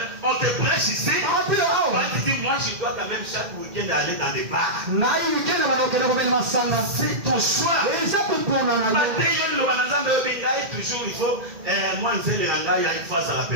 on te prêche ici. Toi, tu dis, moi, je dois quand même chaque week-end aller dans des bars. C'est ton choix. Toujours, il faut, moi, je sais, il y a une phase à la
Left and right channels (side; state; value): left; late; 2.1 ms